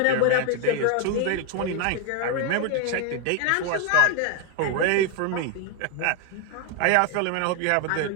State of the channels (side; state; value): both; different; correlation 0.01